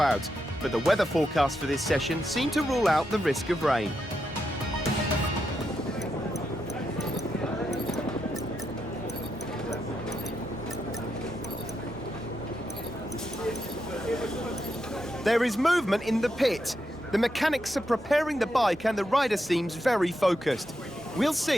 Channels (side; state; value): both; normal; correlation 0.84